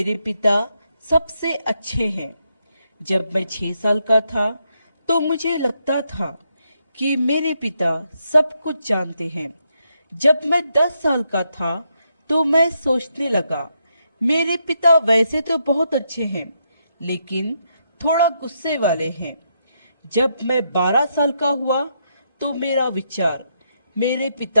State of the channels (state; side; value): inverted; both; correlation -0.80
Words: पिता सबसे अच्छे हैं। जब मैं 6 साल का था तो मुझे लगता था कि मेरे पिता सब कुछ जानते हैं। जब मैं 10 साल का था तो मैं सोचने लगा, मेरे पिता वैसे तो बहुत अच्छे हैं, लेकिन थोड़ा गुस्से वाले हैं। जब मैं 12 साल का हुआ तो मेरा विचार, मेरे